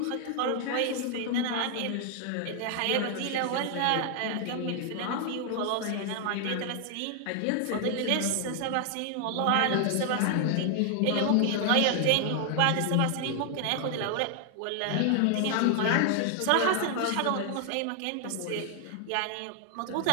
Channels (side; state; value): both; different; correlation 0.00